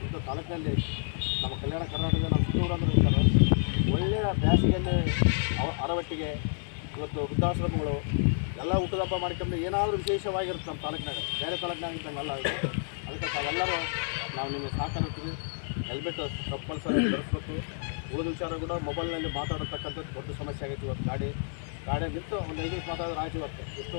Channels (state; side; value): silent; right; 58 dB below the other